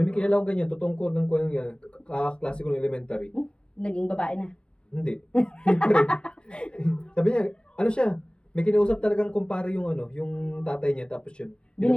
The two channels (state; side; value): late; right; 0.056 ms